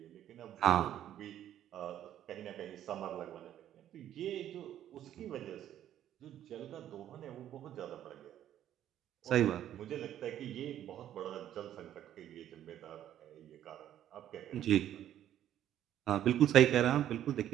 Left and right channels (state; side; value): quieter; left; 11.4 dB